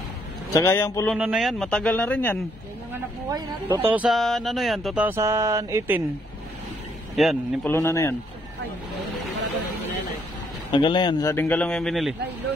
Tsaka yung pulunan na yan, matagal na rin yan. Yan yung anak buhay natin. 2000, ano yan? 2018. Yan, yung pulunan na yan. Ay, Tagal na yan, sa dinggalong yung binili. nylon.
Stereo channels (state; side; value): normal; both; correlation 0.70